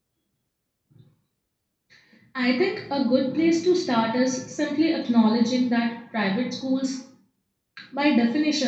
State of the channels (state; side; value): identical; both; correlation 1.00